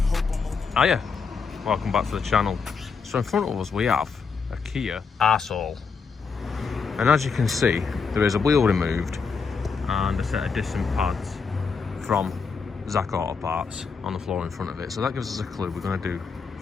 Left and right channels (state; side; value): quieter; right; 5.3 dB